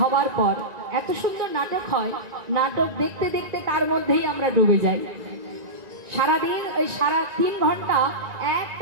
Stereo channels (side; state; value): left; late; 1.9 ms